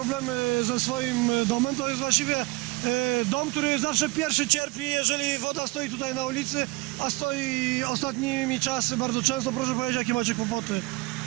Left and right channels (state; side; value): quieter; left; 24.0 dB